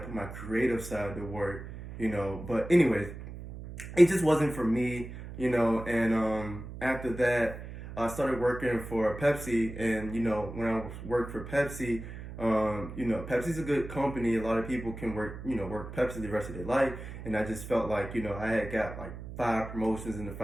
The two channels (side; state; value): right; noise; hum, 11 dB below the sound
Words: put my creative side to work. But anyways, it just wasn't for me. And after that, I started working for Pepsi. And when I worked for Pepsi, Pepsi's a good company. A lot of people can work Pepsi the rest of their life. And I just felt like I had got like 5 promotions in the